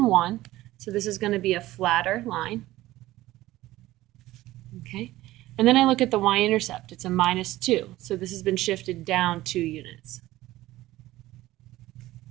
1, so this is going to be a flatter line. Okay. And then I look at the y-intercept. It's a -2, so this has been shifted down 2 units.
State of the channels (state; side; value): quieter; left; 16.5 dB